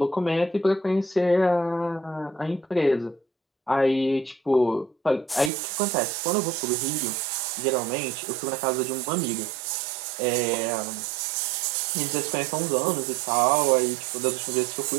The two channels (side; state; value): left; drops out; at 5.5 s